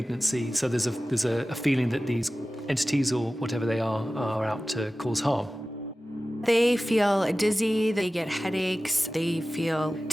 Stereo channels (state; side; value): normal; both; correlation 0.96